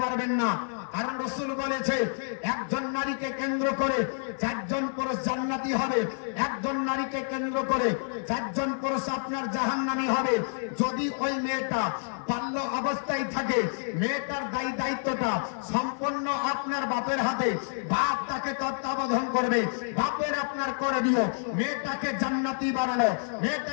পারবেন না। কারণ রাসূল বলেছে একজন নারীকে কেন্দ্র করে চারজন পুরুষ জান্নাতি হবে, একজন নারীকে কেন্দ্র করে চারজন পুরুষ আপনার জাহান্নামী হবে। যদি ওই মেয়েটা বাল্য অবস্থায় থাকে, মেয়েটার দায়িত্বটা সম্পূর্ণ আপনার বাপের হাতে, বাপ তাকে তত্ত্বাবধান করবে, বাপের আপনার করে দিও। মেয়েটাকে জান্নাতি বানানো,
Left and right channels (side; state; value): right; silent; 59 dB below the other